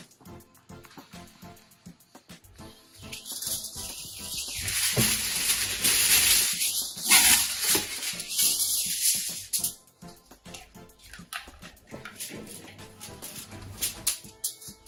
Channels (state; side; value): identical; both; correlation 1.00